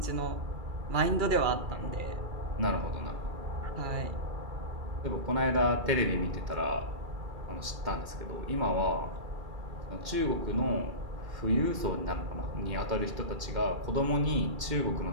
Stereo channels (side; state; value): left; late; 2.3 ms